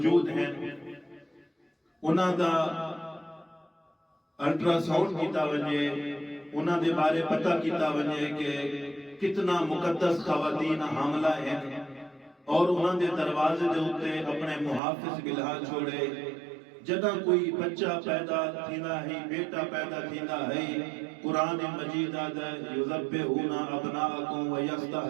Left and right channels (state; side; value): drops out; left; at 14.8 s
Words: ہیں انہاں دا الٹرا ساؤنڈ کیتا ونجے، انہاں دے بارے پتہ کیتا ونجے کہ کتنا مقدس خواتین حاملہ ہیں، اور انہاں دے دروازے دے اتے اپنے محافظ بلہا چھوڑے. جدہ کوئی بچہ پیدا تھیندا ہے، بیٹا پیدا تھیندا ہے، قرآن مجید آدھا یذبحون ابناءکم